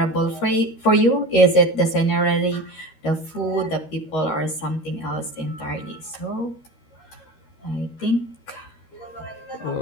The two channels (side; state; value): right; late; 13 ms